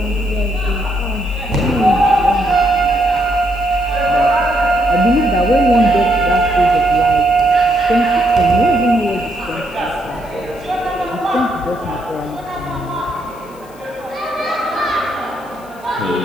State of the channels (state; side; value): noise; left; hiss, 26 dB below the sound